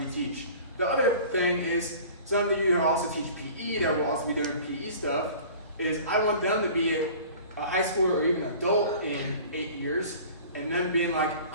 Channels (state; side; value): inverted; both; correlation -0.44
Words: The other thing is, some of you who also teach PE, that will also be doing PE stuff, is I want them to be a high schooler or even adult in 8 years, and then being like,